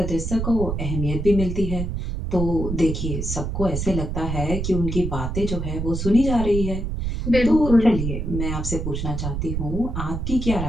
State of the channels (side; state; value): right; noise; rumble, 3 dB below the sound